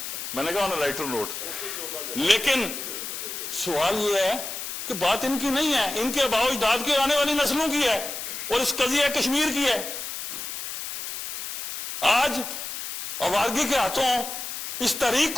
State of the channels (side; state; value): left; noise; hiss, 7 dB below the sound